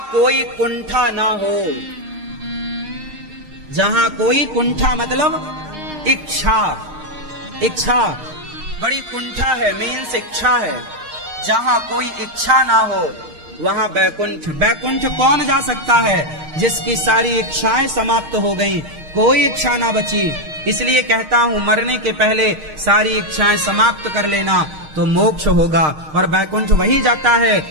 कोई कुंठा ना हो, जहां कोई कुंठा मतलब इच्छा, इच्छा बड़ी कुंठा है, मीन्स इच्छा है। जहां कोई इच्छा ना हो वहां बैकुंठ। बैकुंठ कौन जा सकता है? जिसकी सारी इच्छाएं समाप्त हो गईं, कोई इच्छा ना बची। इसलिए कहता हूं मरने के पहले सारी इच्छाएं समाप्त कर लेना तो मोक्ष होगा। और बैकुंठ वही जाता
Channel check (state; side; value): late; left; 6.5 ms